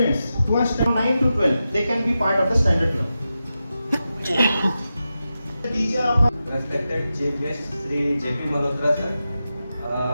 who are from 9 to 12. They can be part of the standard club. Respected Chief Guest Sri J.P. Malhotra sir,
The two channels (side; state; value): both; inverted; correlation -0.91